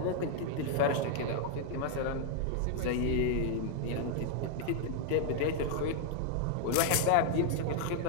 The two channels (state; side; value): different; both; correlation -0.01